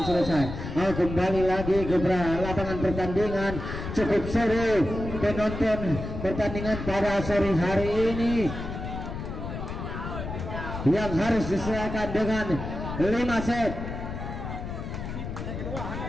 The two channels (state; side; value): noise; left; rumble, 7 dB below the sound